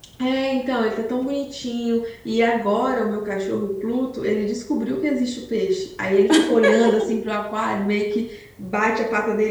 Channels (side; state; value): both; identical; correlation 1.00